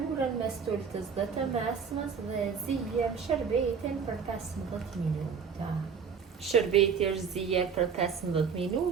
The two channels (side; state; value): left; quieter; 6.3 dB